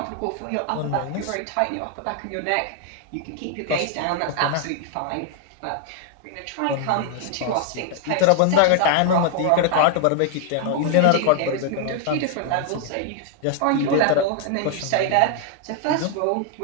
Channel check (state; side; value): different; both; correlation 0.00